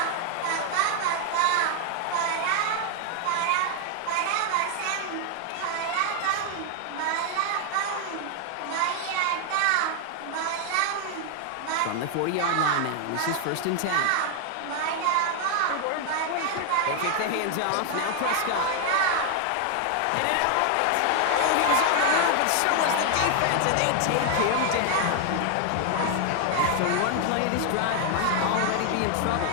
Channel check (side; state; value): both; different; correlation 0.00